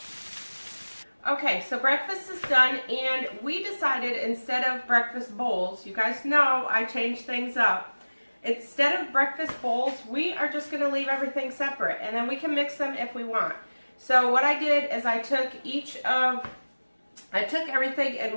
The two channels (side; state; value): both; inverted; correlation -1.00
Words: Okay, so breakfast is done, and we decided instead of breakfast bowls, you guys know I changed things up. instead of breakfast bowls, we are just going to leave everything separate, and then we can mix them if we want. So what I did is I took everything